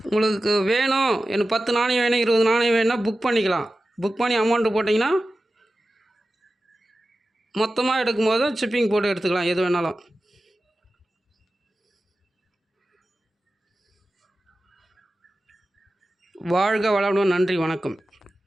உங்களுக்கு வேணும், எனக்கு 10 நாணயம் வேணும், 20 நாணயம் வேணும்னா புக் பண்ணிக்கலாம். புக் பண்ணி அமௌண்ட்டு போட்டிங்கன்னா மொத்தமாக எடுக்கும்போது ஷிப்பிங் போட்டு எடுத்துக்கலாம், எது வேணாலும். வாழ்க வளமுடன். நன்றி, வணக்கம்.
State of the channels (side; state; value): both; normal; correlation 0.94